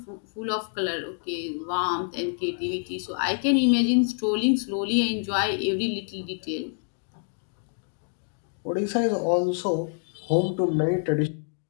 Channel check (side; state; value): right; silent; 60 dB below the other